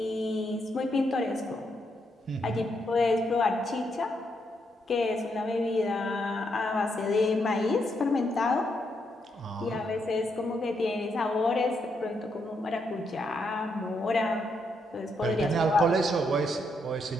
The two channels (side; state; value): both; normal; correlation 0.78